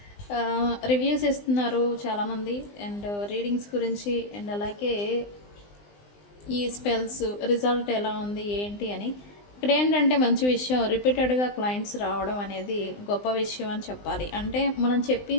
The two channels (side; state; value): right; late; 20 ms